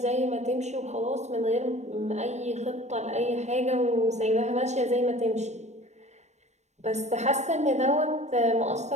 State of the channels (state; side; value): late; left; 0.33 ms